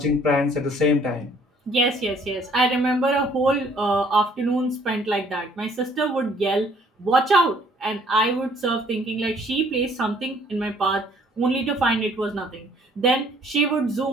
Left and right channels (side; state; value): both; normal; correlation 0.60